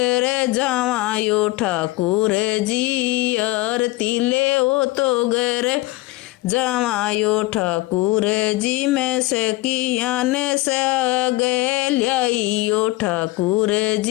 जावायो। ठाकुर जी आरती ले वो तो घर जावायो। ठाकुर जी मैं सखियान साग ल्याइयो। ठाकुर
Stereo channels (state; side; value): quieter; right; 19.4 dB